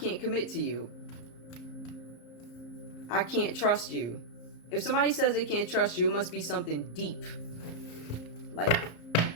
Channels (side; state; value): right; late; 34 ms